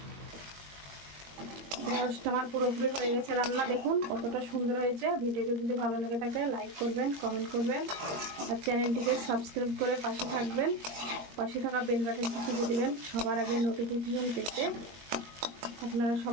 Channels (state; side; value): late; left; 21 ms